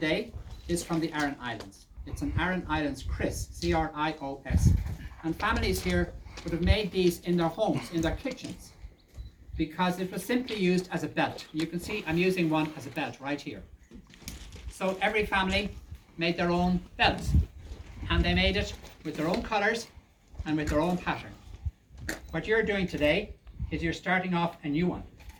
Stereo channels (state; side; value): identical; both; correlation 1.00